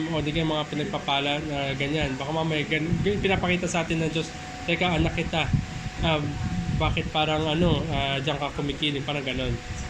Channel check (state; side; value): identical; both; correlation 1.00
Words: o di kaya mga pinagpapala na ganyan. Baka mamaya pinapakita sa atin ng Diyos, teka, anak kita, bakit parang diyan ka kumikilig, parang ganon.